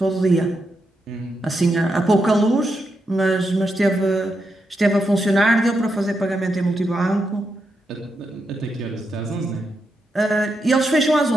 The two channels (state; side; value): normal; both; correlation 0.84